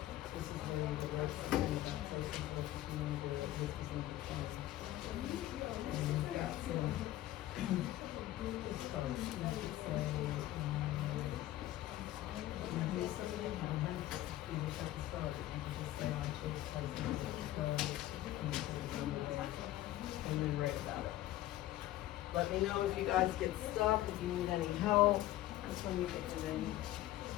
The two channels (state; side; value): quieter; right; 14.7 dB